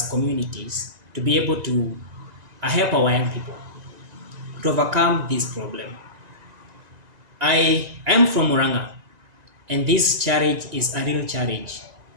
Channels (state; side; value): late; left; 1.9 ms